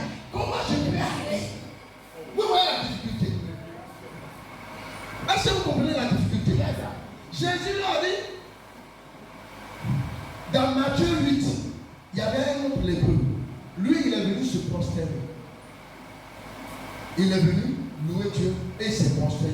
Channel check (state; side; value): identical; both; correlation 1.00